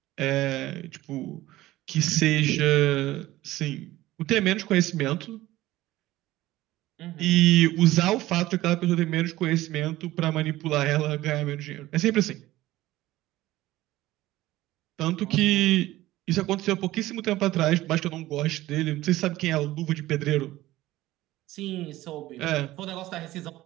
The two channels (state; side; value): quieter; left; 16.4 dB